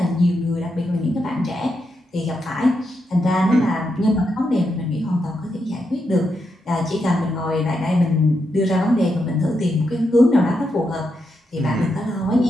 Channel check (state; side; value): normal; both; correlation 0.83